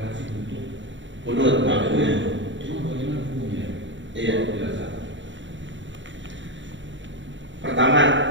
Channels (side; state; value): left; late; 0.54 ms